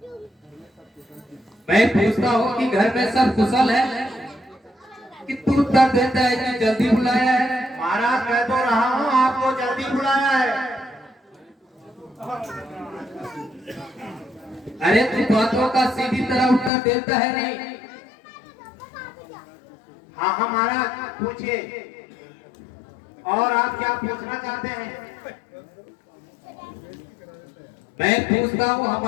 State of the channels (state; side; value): drops out; right; at 16.7 s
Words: मैं पूछता हूँ कि घर में सब कुशल है कि तू उत्तर देता है कि जल्दी बुलाया है। महाराज, कह तो रहा हूँ आपको जल्दी बुलाया है। अरे तू बातों का सीधी तरह उत्तर देता है नहीं। हाँ हाँ महाराज, पूछिए। और आप क्या पूछना चाहते हैं? मैं पूछता हूँ